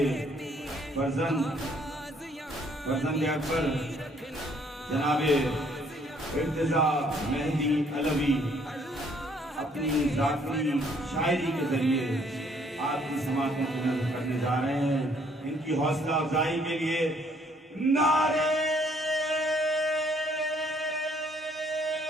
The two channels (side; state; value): both; normal; correlation 0.64